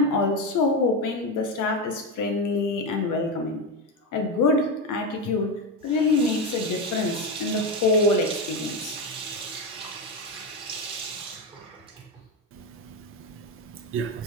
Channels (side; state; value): both; normal; correlation 0.13